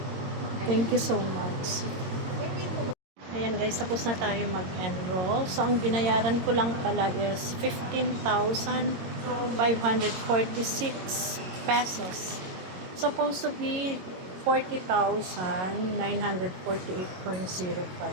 Thank you so much. Ayan guys, tapos na tayo mag-enroll. So, ang binayaran ko lang pala is 15,546 pesos. Supposed to be 40,948.05.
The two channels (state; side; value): late; left; 22 ms